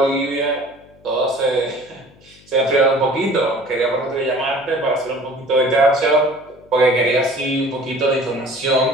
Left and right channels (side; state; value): left; noise; hum, 27 dB below the sound